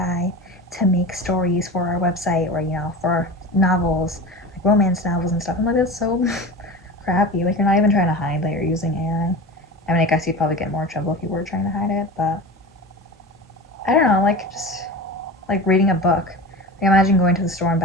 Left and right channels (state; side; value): normal; both; correlation 0.31